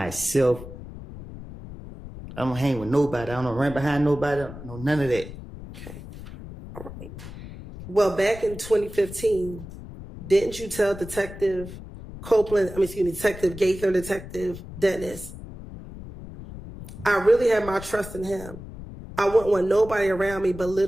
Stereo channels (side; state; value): left; noise; rumble, 13 dB below the sound